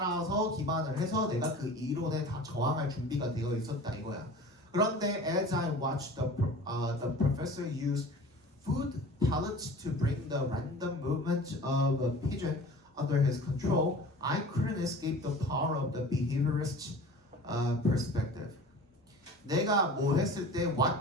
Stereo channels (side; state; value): both; normal; correlation 0.40